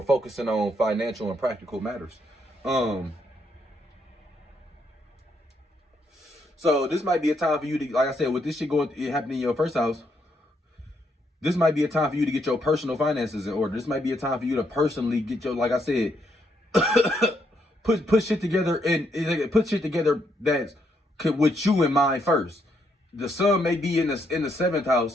focusing on financial and practical matters. So this might be a time for you to, like I said, with this shit happening in your first house, this might be a time for you to get your personal finances in order. This might be a time for you to personally get your, like I said, put shit together, and put shit together that's with you in mind first. The sun may be in the seventh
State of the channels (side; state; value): both; normal; correlation 0.75